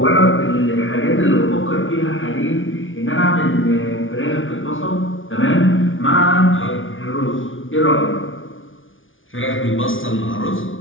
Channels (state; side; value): late; right; 0.57 ms